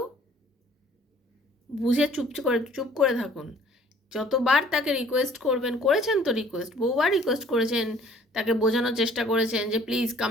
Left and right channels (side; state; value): both; normal; correlation 0.56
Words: বুঝে চুপ করে থাকুন। যতবার তাকে রিকোয়েস্ট করবেন, করেছেন তো রিকোয়েস্ট, বহুবার রিকোয়েস্ট করেছেন, তাকে বোঝানোর চেষ্টা করেছেন যে প্লিজ